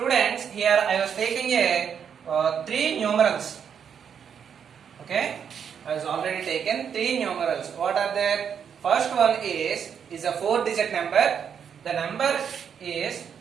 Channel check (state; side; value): quieter; left; 7.6 dB